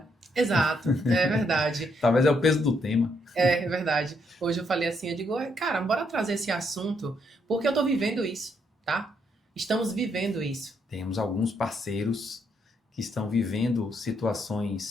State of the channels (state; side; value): normal; both; correlation 0.74